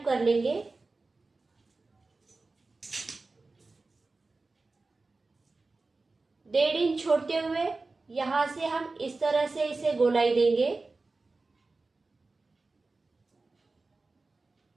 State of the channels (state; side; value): quieter; left; 3.6 dB